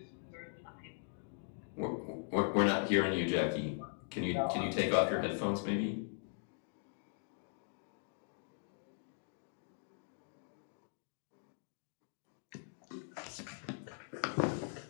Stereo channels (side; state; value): right; silent; digital silence